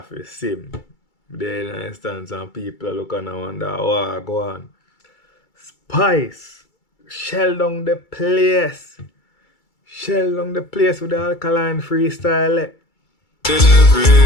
for sim. There in instance and people look and wonder, oh, go on. Spice. Shell down the place. Shell down the place with the alkaline freestyle. The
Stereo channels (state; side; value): late; right; 2.3 ms